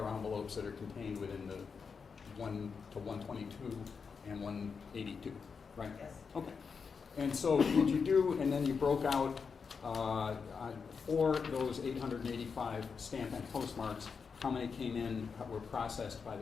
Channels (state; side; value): quieter; right; 5.6 dB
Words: envelopes that are contained within the 1 to 122 and 182, right? yes. Okay. And so did you do, and then you broke out for those 885 stamp and postmarks, how many came in, were processed by